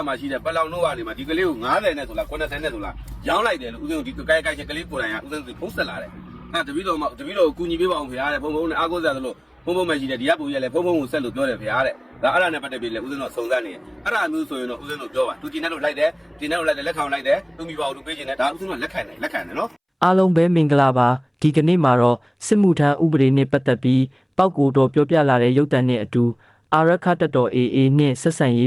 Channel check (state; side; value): identical; both; correlation 1.00